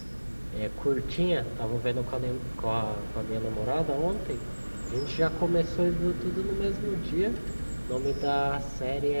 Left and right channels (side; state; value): both; inverted; correlation -1.00